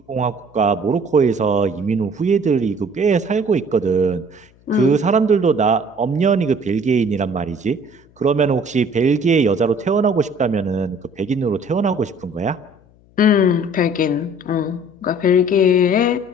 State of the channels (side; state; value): left; noise; hum, 30 dB below the sound